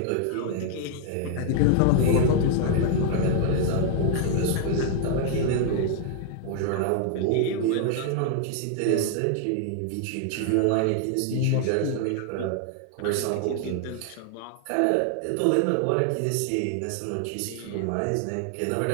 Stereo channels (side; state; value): both; different; correlation 0.00